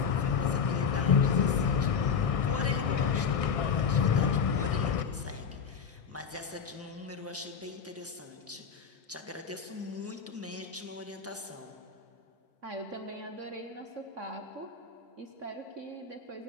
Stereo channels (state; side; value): quieter; right; 6.3 dB